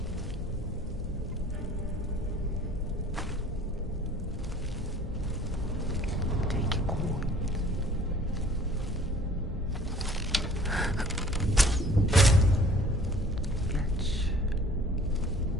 Take it on. Let's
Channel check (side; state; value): both; normal; correlation 0.51